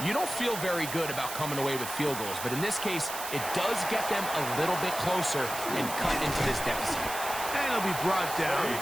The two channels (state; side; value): noise; right; hiss, 7 dB below the sound